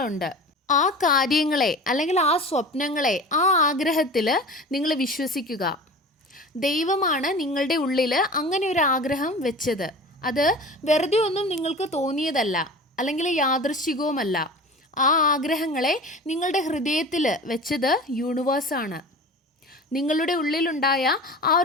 ആ കാര്യങ്ങളെ അല്ലെങ്കിൽ ആ സ്വപ്നങ്ങളെ, ആ ആഗ്രഹത്തിൽ നിങ്ങൾ വിശ്വസിക്കുക. ദൈവമാണ് നിങ്ങളുടെ ഉള്ളിൽ അങ്ങനെ ഒരു ആഗ്രഹം വെച്ചത്. അത് വെറുതെ ഒന്നും നിങ്ങൾക്ക് തോന്നിയതല്ല, അല്ലെങ്കിൽ യാദൃശ്ചികവുമല്ല. ആ ആഗ്രഹങ്ങളെ നിങ്ങളുടെ ഹൃദയത്തിൽ വെച്ചത് യൂണിവേഴ്സാണ്. നിങ്ങളുടെ ഉള്ളിലുണ്ടായ ആ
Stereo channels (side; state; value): both; normal; correlation 0.37